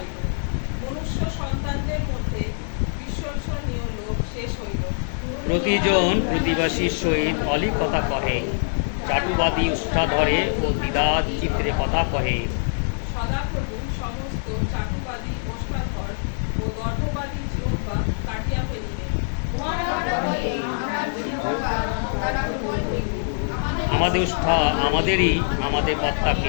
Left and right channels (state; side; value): silent; right; digital silence